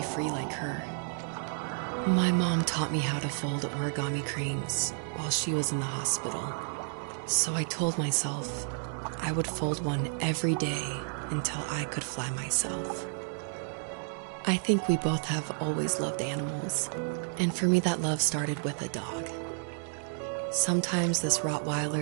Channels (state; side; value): silent; left; 57 dB below the other